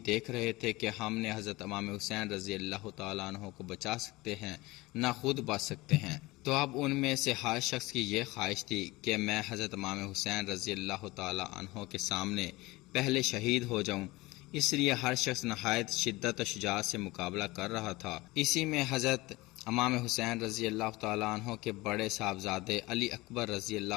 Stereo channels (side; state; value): right; quieter; 21.2 dB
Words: دیکھ رہے تھے کہ ہم نے حضرت امام حسین رضی اللہ تعالیٰ عنہ کو بچا سکتے ہیں نہ خود بچ سکتے ہیں۔ تو اب ان میں سے ہر شخص کی یہ خواہش تھی کہ میں حضرت امام حسین رضی اللہ تعالیٰ عنہ کے سامنے پہلے شہید ہو جاؤں، اس لیے ہر شخص نہایت شدت و شجاعت سے مقابلہ کر رہا تھا۔ اسی میں حضرت امام حسین رضی اللہ تعالیٰ عنہ کے بڑے صاحبزادے علی اکبر رضی